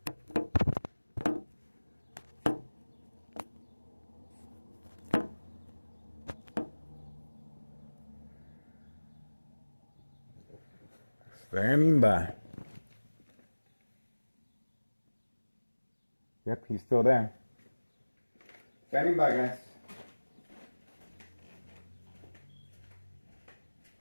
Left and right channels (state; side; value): inverted; both; correlation -1.00